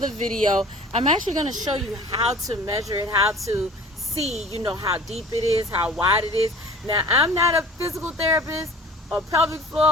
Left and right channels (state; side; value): normal; both; correlation 0.45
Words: video, I'm actually going to show you how to measure it, how to see, you know, how deep it is, how wide it is. Now, I'm not a physical therapist or pelvic floor,